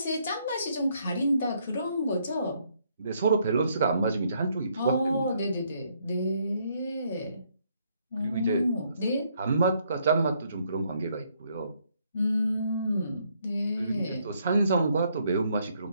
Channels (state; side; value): inverted; both; correlation -0.71